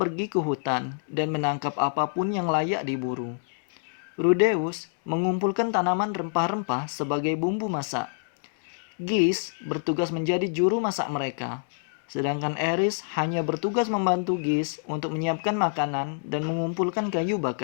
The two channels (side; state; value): right; silent; digital silence